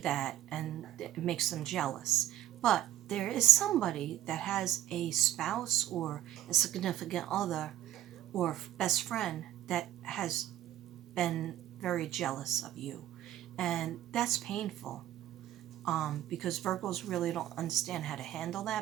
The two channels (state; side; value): quieter; left; 13.0 dB